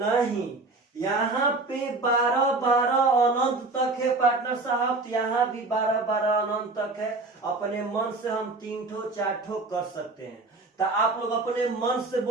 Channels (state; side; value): quieter; left; 3.4 dB